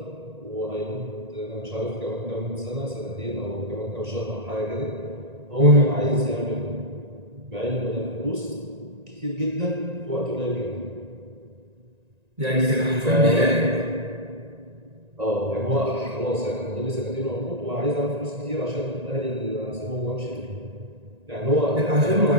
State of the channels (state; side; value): late; left; 1.9 ms